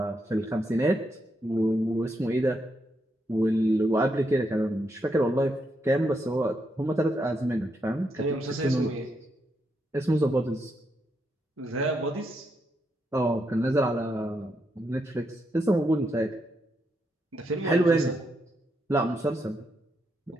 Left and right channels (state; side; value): normal; both; correlation 0.80